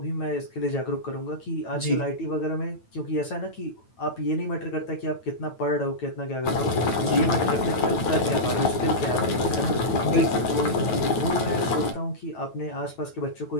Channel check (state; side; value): late; right; 9.0 ms